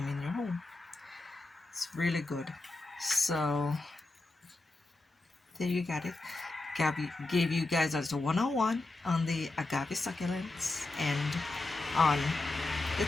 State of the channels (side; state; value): right; quieter; 3.0 dB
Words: in your home. It's really good. So there you got it. gave you guys a one-on-one on the agave succulents and on the